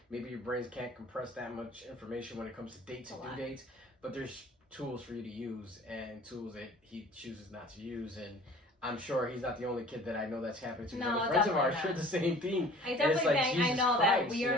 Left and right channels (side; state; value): both; normal; correlation 0.48